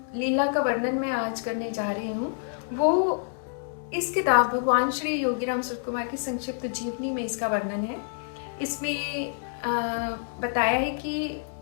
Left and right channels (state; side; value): silent; right; 60 dB below the other